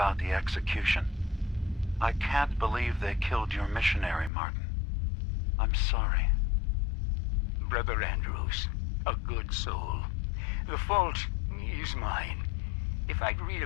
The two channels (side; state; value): right; drops out; at 4.3 s